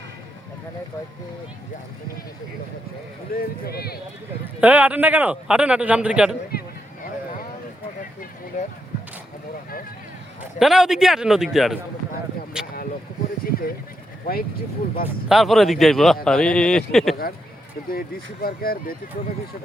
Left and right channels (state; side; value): normal; both; correlation 0.82